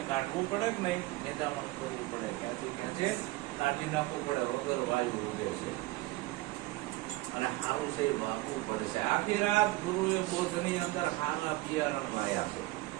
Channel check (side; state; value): left; quieter; 19.3 dB